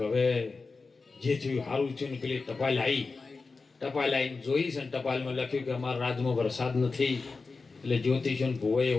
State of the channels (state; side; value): quieter; right; 4.2 dB